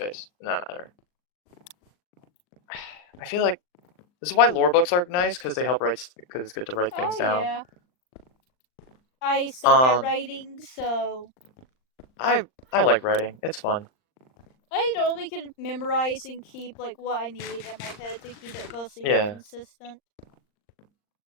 in that matter. I feel like this is why lore books are nice, because they help write, because it's good to write things down. Yeah. I suck at writing, so I like writing. It's fun. I only can memorize and keep like what I need in my head to keep it mostly consistent.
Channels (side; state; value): right; late; 39 ms